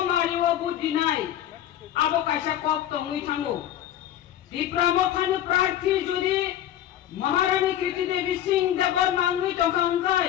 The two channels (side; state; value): right; quieter; 11.6 dB